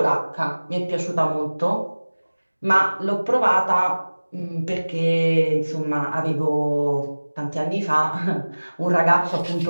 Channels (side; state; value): both; inverted; correlation -1.00